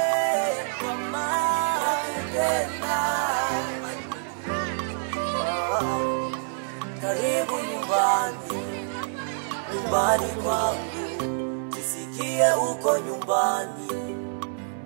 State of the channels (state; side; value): silent; left; 61 dB below the other